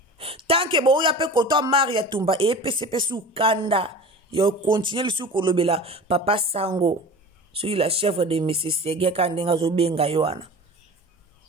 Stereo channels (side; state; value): both; normal; correlation 0.36